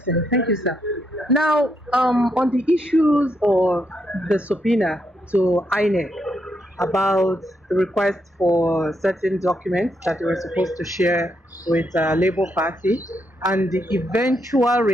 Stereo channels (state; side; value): normal; both; correlation 0.79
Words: Thank you, sir. Now, on the issues of the subpoena to INEC about the request for certain documents that they were supposed to share with Labour Party, and the eventual